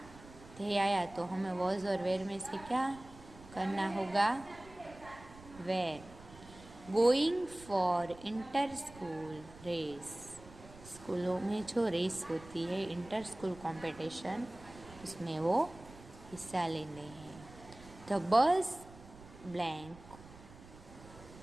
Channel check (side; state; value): right; noise; rumble, 19 dB below the sound